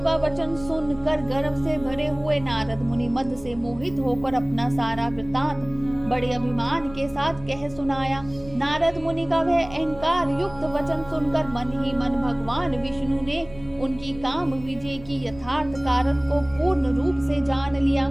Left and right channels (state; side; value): noise; right; rumble, 18 dB below the sound